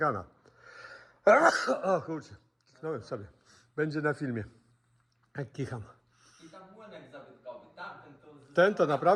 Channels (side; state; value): both; identical; correlation 1.00